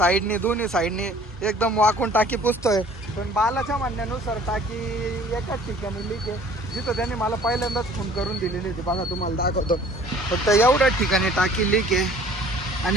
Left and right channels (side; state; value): both; normal; correlation 0.52